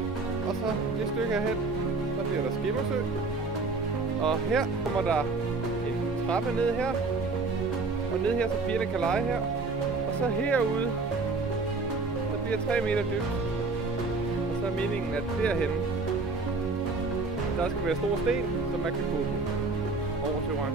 Og så det stykke herhen. Så bliver der skimmersø. Og her kommer der en trappe ned her. Og ned her, så pigerne kan lege her. Og så herude, der bliver 3 meter dybt. Og så er meningen, at derhenne, der skal være store sten, så man kan gå over til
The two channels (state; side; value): quieter; left; 3.7 dB